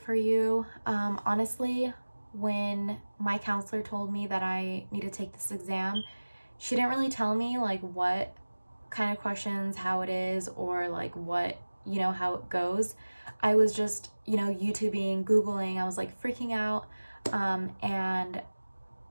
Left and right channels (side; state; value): both; inverted; correlation -1.00